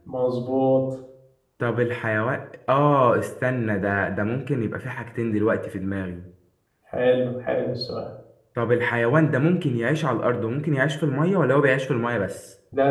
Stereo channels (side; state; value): both; identical; correlation 1.00